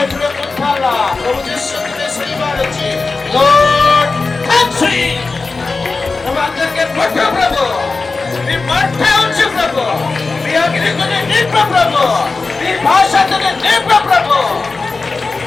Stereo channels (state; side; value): quieter; right; 3.9 dB